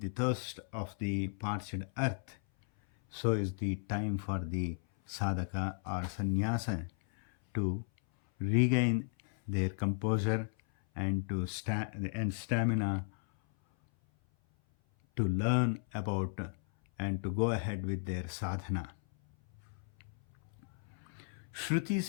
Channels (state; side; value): silent; right; 54 dB below the other